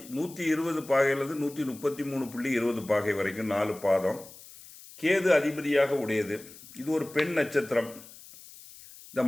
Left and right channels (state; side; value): noise; left; hiss, 19 dB below the sound